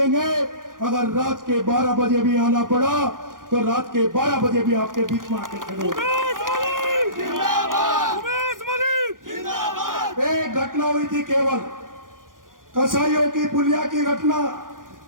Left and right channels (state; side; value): late; left; 0.90 ms